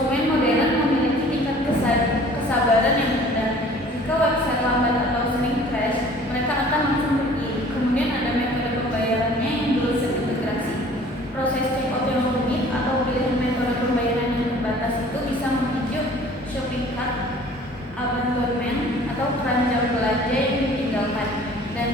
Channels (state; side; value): normal; both; correlation 0.50